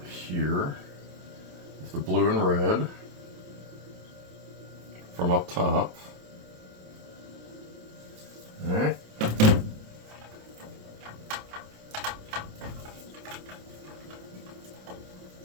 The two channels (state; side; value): late; left; 27 ms